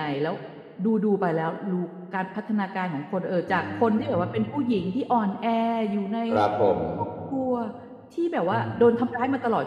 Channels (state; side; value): identical; both; correlation 1.00